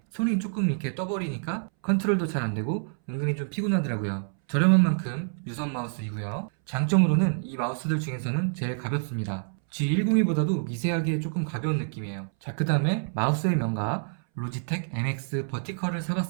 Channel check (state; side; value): silent; left; 60 dB below the other